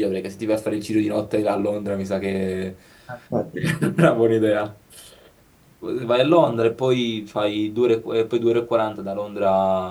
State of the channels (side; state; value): both; identical; correlation 1.00